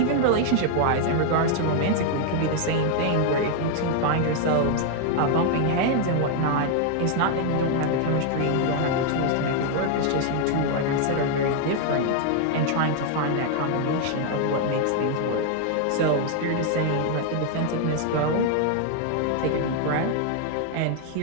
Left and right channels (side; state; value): both; different; correlation 0.00